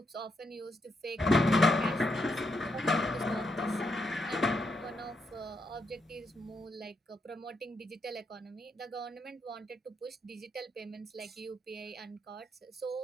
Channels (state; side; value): normal; both; correlation 0.79